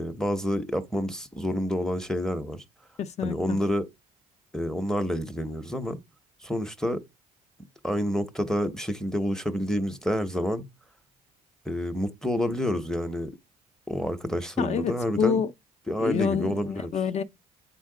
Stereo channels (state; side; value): normal; both; correlation 0.79